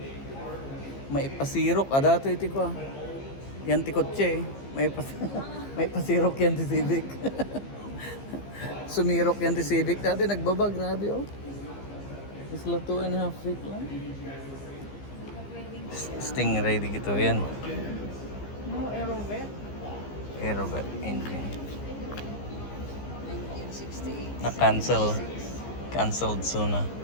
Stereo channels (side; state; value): right; late; 15 ms